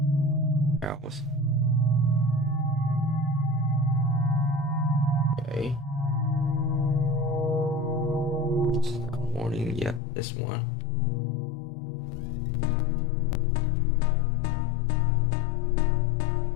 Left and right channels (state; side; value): drops out; right; at 10.0 s